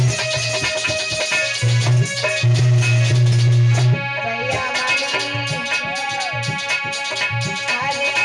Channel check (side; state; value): both; identical; correlation 1.00